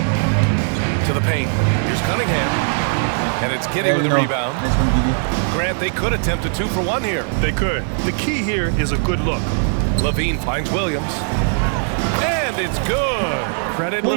To the paint. Here's Cunningham. And it's Giddy with the rebound. Nice one, Giddy. Grant, they could attempt a 2 for 1 here. They could. The key here is a good look. Levine finds Williams. And it's good. Credit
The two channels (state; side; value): silent; left; 59 dB below the other